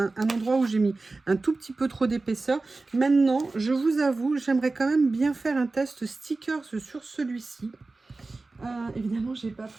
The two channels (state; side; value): quieter; left; 3.5 dB